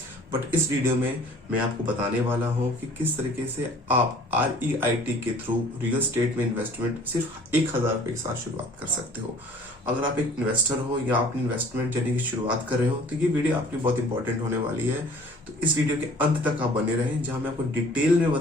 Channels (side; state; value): both; normal; correlation 0.51